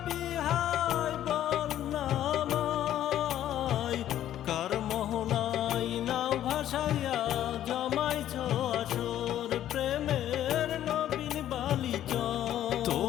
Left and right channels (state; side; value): quieter; right; 11.8 dB